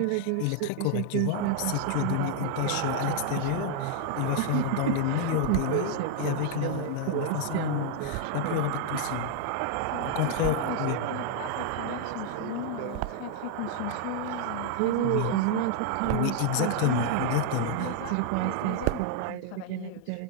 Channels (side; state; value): both; different; correlation 0.00